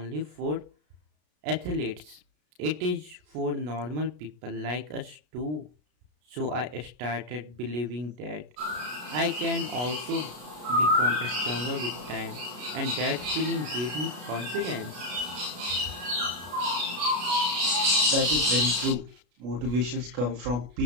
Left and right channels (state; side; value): late; left; 33 ms